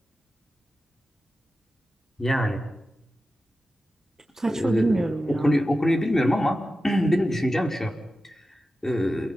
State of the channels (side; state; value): both; normal; correlation 0.93